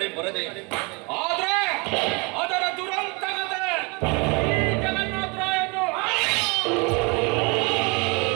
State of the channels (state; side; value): quieter; left; 29.8 dB